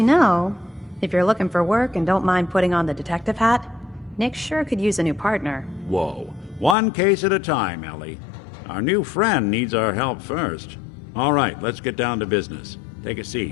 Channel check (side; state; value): right; drops out; at 6.8 s